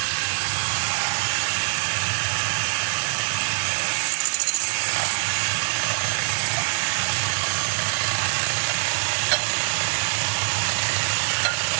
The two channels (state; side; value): silent; left; 61 dB below the other